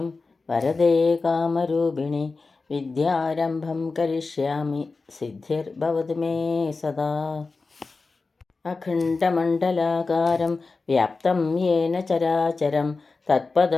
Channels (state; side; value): quieter; right; 4.0 dB